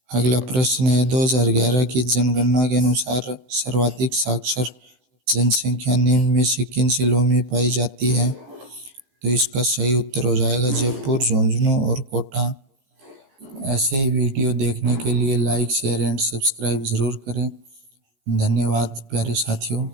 अगला प्रश्न है, 2011 की जनगणना के अनुसार सर्वाधिक साक्षर जनसंख्या निम्न में से किन जिलों में पाई जाती है? तो इसका सही उत्तर हो जाएगा जयपुर, झुंझुनू और कोटा। ऐसे ही वीडियो देखने के लिए लाइक शेयर एंड सब्सक्राइब ज़रूर करें। धन्यवाद प्यारे साथियों।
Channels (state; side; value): late; left; 16 ms